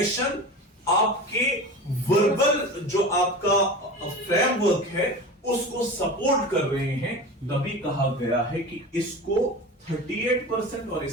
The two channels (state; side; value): normal; both; correlation 0.31